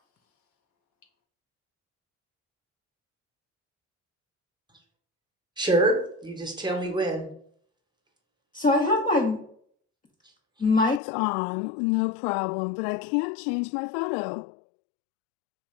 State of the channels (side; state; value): right; drops out; at 11.0 s